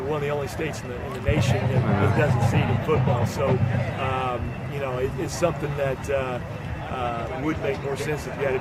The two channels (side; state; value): both; identical; correlation 1.00